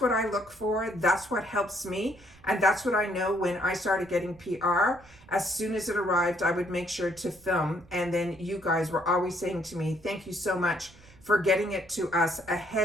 I look for. That's what helps me. And that's what I know when I started getting PR. As soon as it arrived, I would make sure to film. And then you guys were always saying to me, thank you so much for getting it to us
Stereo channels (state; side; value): noise; right; rumble, 25 dB below the sound